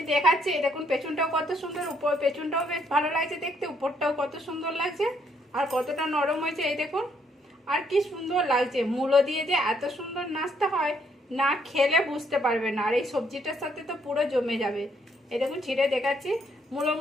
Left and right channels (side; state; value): both; normal; correlation 0.70